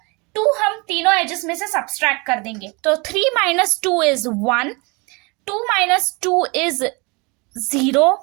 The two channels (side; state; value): left; quieter; 28.7 dB